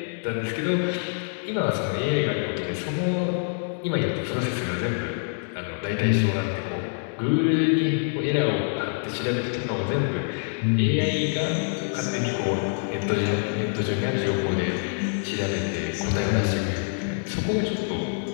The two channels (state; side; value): silent; right; 60 dB below the other